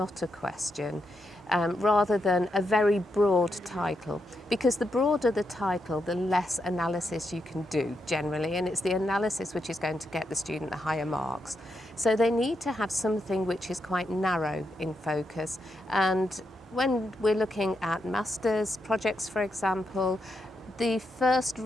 a question, rather than a very broad title. Because the broader the title, the less analysis you can do generally, and it's the analysis which is going to get the student the higher marks. So they need to have something which is quite narrow in focus. And when we're looking at master's projects, for example, the first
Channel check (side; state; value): both; normal; correlation 0.83